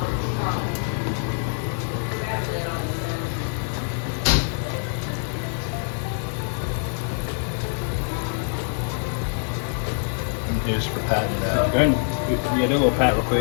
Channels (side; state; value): right; silent; 62 dB below the other